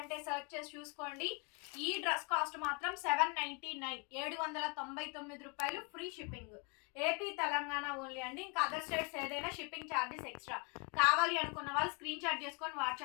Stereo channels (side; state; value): right; quieter; 32.7 dB